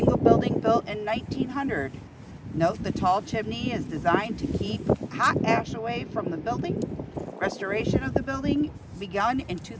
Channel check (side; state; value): both; identical; correlation 1.00